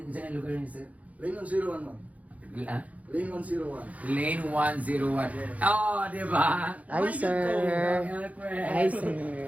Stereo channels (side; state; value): left; late; 0.070 ms